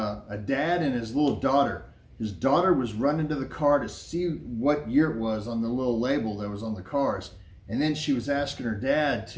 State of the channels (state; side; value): identical; both; correlation 1.00